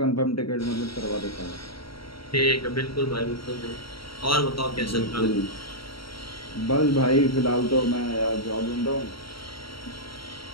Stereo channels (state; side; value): late; right; 0.74 ms